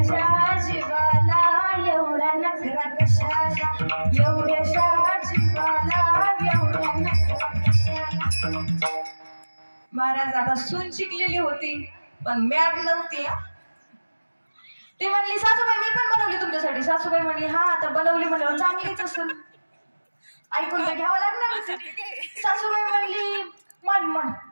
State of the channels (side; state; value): both; inverted; correlation -1.00